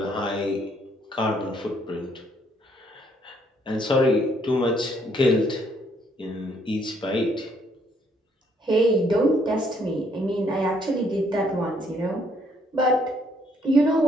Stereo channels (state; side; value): normal; both; correlation 0.68